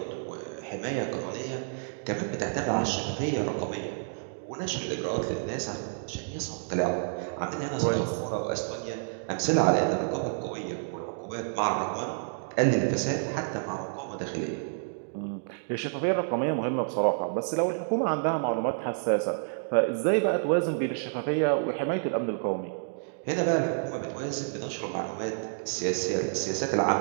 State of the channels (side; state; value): left; silent; digital silence